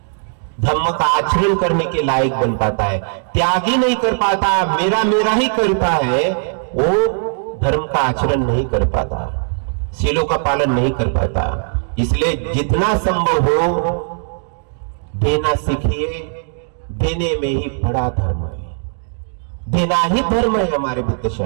धम्म का आचरण करने के लायक बन पाता है। त्यागी नहीं कर पाता, मेरा मेरा ही करता है, वो धर्म का आचरण नहीं कर पाता, शीलों का पालन नहीं कर पाता। इसलिए जितना संभव हो देना सीखिए, देने में ही बड़ा धर्म है, देना ही धर्म है हमारे बुद्ध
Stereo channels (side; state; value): left; silent; digital silence